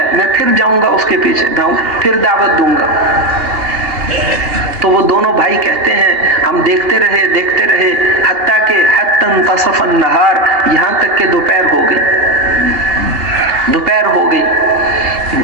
میں پھر جاؤں گا اس کے پیچھے، پھر دعوت دوں گا۔ تو وہ دونوں بھائی کہتے ہیں ہم دیکھتے رہے حتیٰ کہ حتی انتصف النہار، یہاں تک کہ دوپہر ہو گئی۔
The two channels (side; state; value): left; late; 2.8 ms